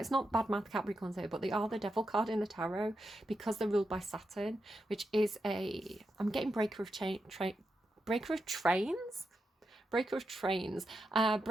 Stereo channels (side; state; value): both; normal; correlation 0.87